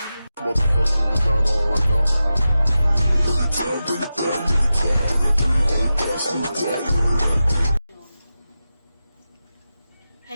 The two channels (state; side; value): inverted; both; correlation -0.92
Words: motherfucking designer right now. Bring it down, bring it down, bring it down. I got 3 whole thoughts in the dark.